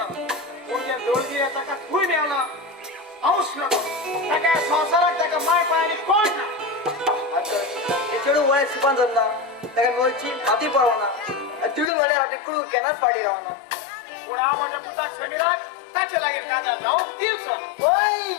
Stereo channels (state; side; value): drops out; right; at 11.9 s